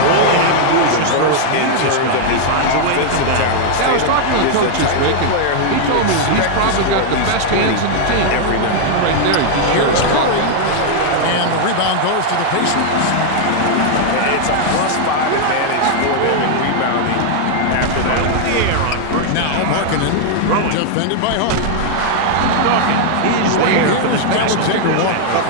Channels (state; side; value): different; both; correlation -0.01